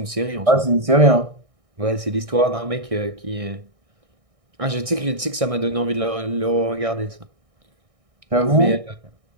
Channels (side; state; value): left; late; 1.6 ms